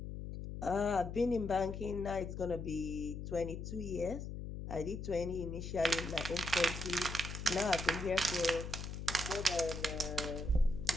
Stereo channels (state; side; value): noise; left; hum, 7 dB below the sound